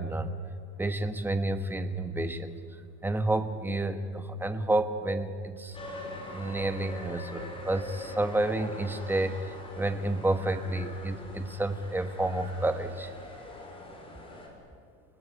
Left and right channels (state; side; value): normal; both; correlation 0.78